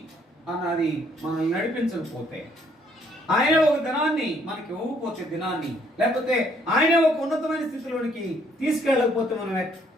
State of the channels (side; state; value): both; normal; correlation 0.66